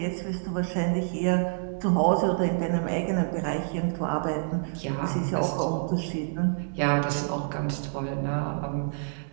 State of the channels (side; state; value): left; silent; digital silence